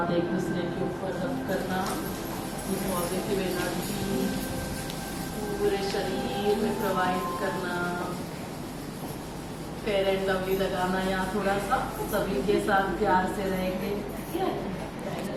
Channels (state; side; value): identical; both; correlation 1.00